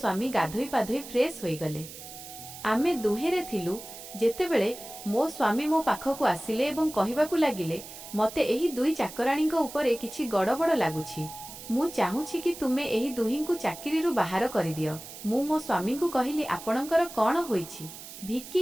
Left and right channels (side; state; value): right; noise; hiss, 14 dB below the sound